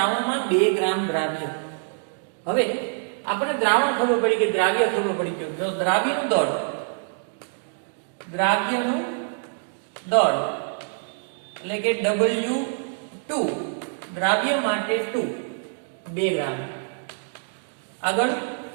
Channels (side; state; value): left; silent; digital silence